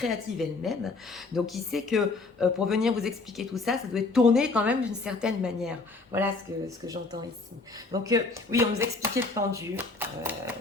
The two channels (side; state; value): right; quieter; 3.7 dB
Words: elle-même. Donc, il sait que pour venir vous expliquer tout ça, ça doit être tourné quand même d'une certaine manière. Voilà ce que j'entends ici. Donc, oui, on nous expliquait le pendu,